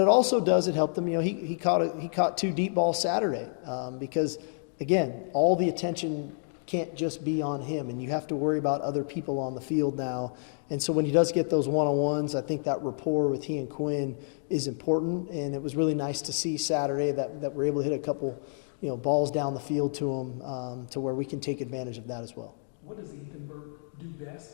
also does, it helped him. He caught two deep balls Saturday because, again, all the attention can't just be on him, and you have to worry about other people on the field now. And so when he does get those one-on-ones, I think that rapport with he and Quinn is important, and it was really nice to see Saturday that we're able to hit a couple, balls down the field to him, to where we can take advantage of that as well. What does Ethan Burke do best,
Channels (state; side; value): silent; right; digital silence